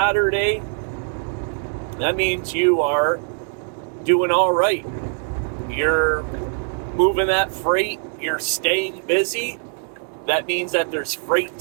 that means you are doing all right. You're moving that freight, you're staying busy. That means that there's freight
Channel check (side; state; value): left; silent; 64 dB below the other